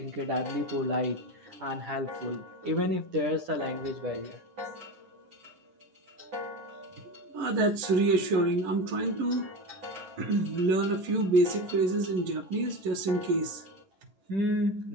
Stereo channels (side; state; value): left; late; 10 ms